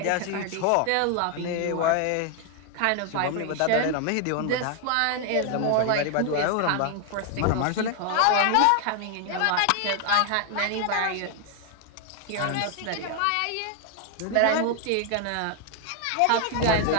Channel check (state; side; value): different; both; correlation 0.00